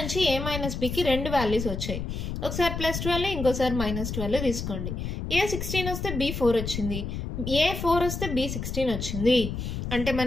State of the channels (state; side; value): noise; left; rumble, 4 dB below the sound